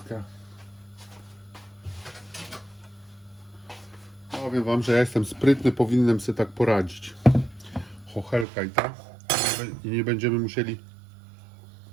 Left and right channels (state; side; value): drops out; left; at 8.5 s